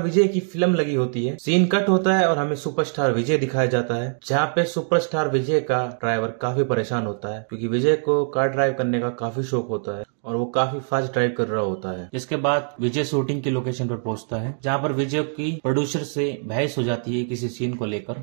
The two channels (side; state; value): left; silent; digital silence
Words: की फिल्म लगी होती है। सीन कट होता है और हमें सुपरस्टार विजय दिखाया जाता है, जहाँ पे सुपरस्टार विजय का ड्राइवर काफी परेशान होता है क्योंकि विजय को कार ड्राइव करने का काफी शौक होता है और वो काफी फास्ट ड्राइव कर रहा होता है। जिसके बाद विजय शूटिंग की लोकेशन पर पहुंचता है, जहाँ पर विजय की प्रोड्यूसर से बहस हो जाती है किसी सीन को